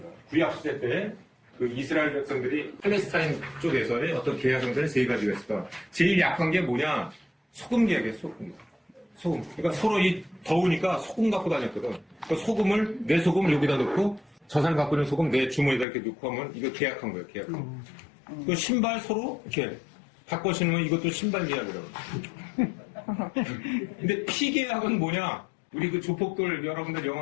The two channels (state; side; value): drops out; right; at 15.9 s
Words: 구약시대 때 그 이스라엘 백성들이 팔레스타인 쪽에서의 어떤 계약성들은 세 가지가 있습니다. 제일 약한 게 뭐냐? 소금 계약이에요. 소금. 그러니까 서로 더우니까 소금 갖고 다녔거든. 그러니까 소금을 내 소금을 여기다 넣고 저 사람 갖고 있는 소금 내 주머니에다 이렇게 넣고 하면 이거 계약한 거예요. 계약한. 그 신발 서로 이렇게 바꿔 신으면 이것도 신발 계약이라고. 근데 피 계약은 뭐냐? 우리 그 조폭들 여러분들